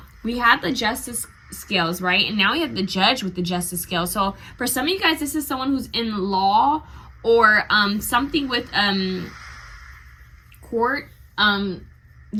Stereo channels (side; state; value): both; identical; correlation 1.00